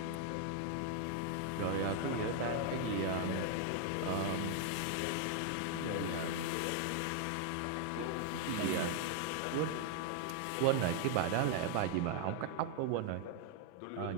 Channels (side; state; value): both; different; correlation 0.00